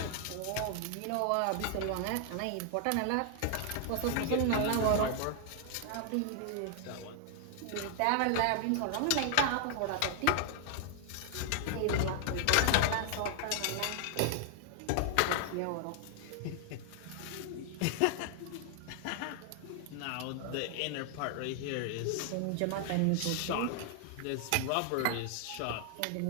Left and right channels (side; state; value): both; different; correlation 0.00